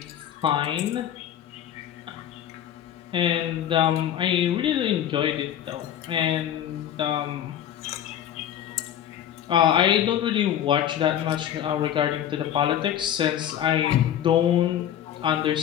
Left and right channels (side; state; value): right; quieter; 10.4 dB